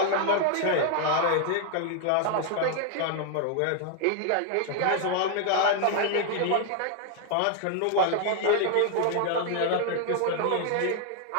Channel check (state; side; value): different; both; correlation 0.00